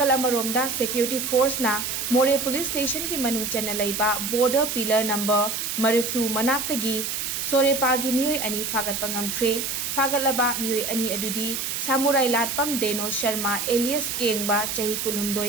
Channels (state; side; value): noise; right; hiss, 3 dB below the sound